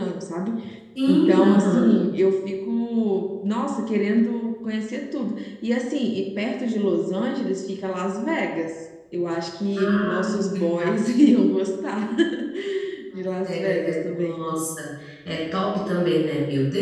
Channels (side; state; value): both; identical; correlation 1.00